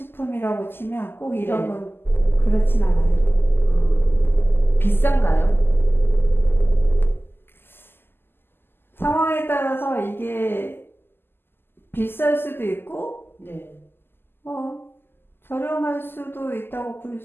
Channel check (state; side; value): late; right; 0.10 ms